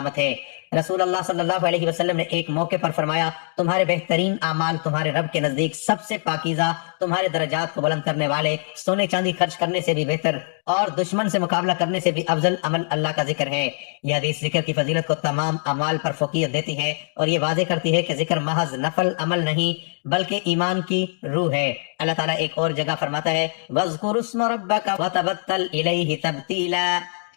ہے۔ رسول اللہ صلی اللہ علیہ وسلم نے ایک موقع پر فرمایا تمہارے بہترین اعمال تمہارے رب کے نزدیک سب سے پاکیزہ، تمہارے درجات کو بلند کرنے والے، سونے چاندی خرچ کرنے سے بھی بہتر اور دشمن سے مقابلہ کرنے سے بھی افضل عمل اللہ کا ذکر ہے۔ یہ حدیث ذکر کی فضیلت کو تمام اعمال پر فوقیت دیتی ہے اور یہ واضح کرتی ہے کہ ذکر محض نفل عمل نہیں بلکہ ایمان کی روح ہے۔ اللہ تعالیٰ ایک اور جگہ فرماتا ہے وَاذْكُرِ اسْمَ رَبَّكَ وَتَبَتَّلْ إِلَيْهِ تَبْتِيلًا،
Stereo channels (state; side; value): silent; right; digital silence